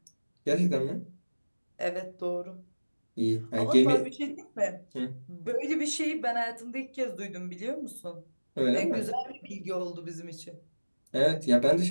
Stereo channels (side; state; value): both; inverted; correlation -1.00